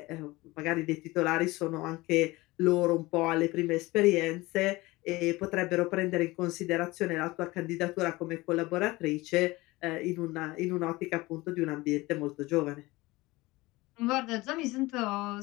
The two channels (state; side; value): quieter; right; 20.9 dB